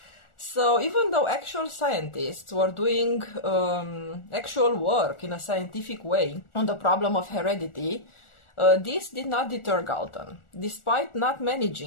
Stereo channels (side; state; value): right; late; 1.4 ms